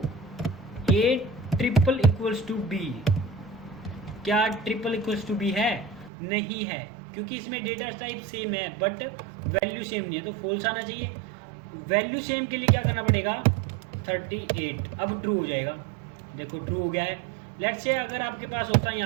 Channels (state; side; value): drops out; left; at 6.1 s